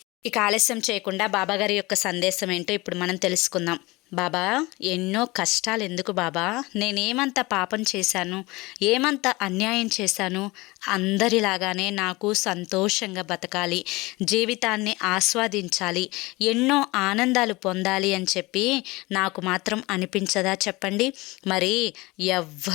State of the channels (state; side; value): quieter; right; 22.4 dB